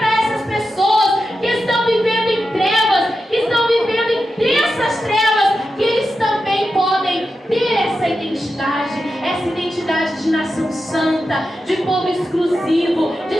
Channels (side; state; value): both; normal; correlation 0.90